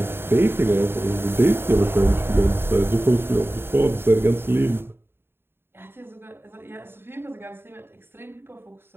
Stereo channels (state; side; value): late; left; 0.11 ms